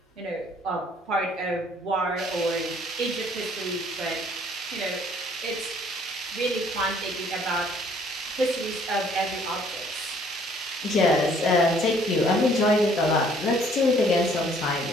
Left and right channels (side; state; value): both; normal; correlation 0.60